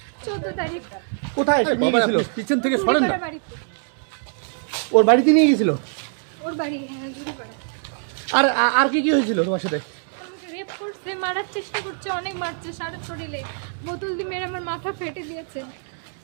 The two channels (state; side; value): silent; left; 63 dB below the other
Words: 14 তারিখ। কোথায় নিয়ে গেছিল? পিছন থেকে সরেন না। ওর বাড়িতে নিয়ে গেছিল? ওর বাড়ি জুড়িপাড়া। আর আর কি কি হয়েছিল তোমার সাথে? রেপ করছে, মারার চেষ্টা করছে, অনেক মারছে, সারা শরীরে বোতল দিয়ে মেরে আমার মাথা ফেটে দিয়েছে।